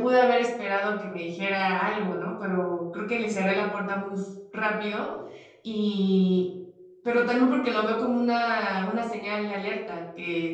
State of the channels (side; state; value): both; identical; correlation 1.00